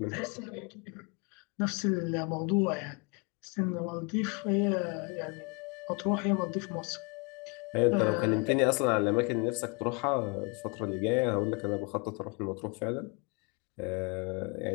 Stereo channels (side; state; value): right; quieter; 31.7 dB